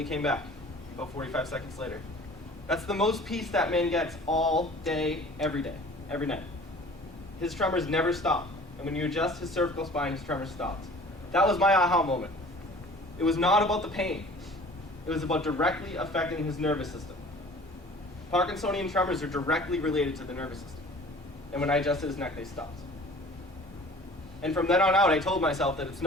came back, about 45 seconds later. That's the most peace that man gets all day, every night. His tremors never stop. And when you adjust his cervical spine, his tremors stopped. That was my aha moment. It was not about the pain. It was about directly affecting his nervous system. Parkinsonian tremors are directly related to the nervous system. And when I adjusted his neck, they stopped. And from then on out, I told myself that it's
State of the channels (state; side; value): normal; both; correlation 0.47